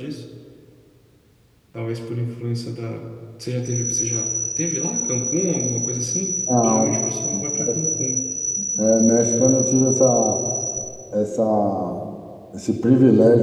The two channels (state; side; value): identical; both; correlation 1.00